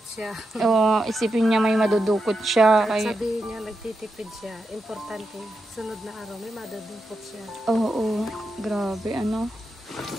siya. O, isipin niya may madudukot siya. At sabihin niya, nagtitipid siya. Importante, sunod na araw, may madudukot siya. Oo, grabe,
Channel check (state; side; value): normal; both; correlation 0.87